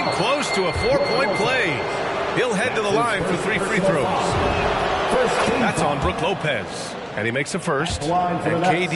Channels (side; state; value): both; identical; correlation 1.00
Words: close to a 4-point play. He'll head to the line for 3 free throws. That's on Brook Lopez. And he makes a first. And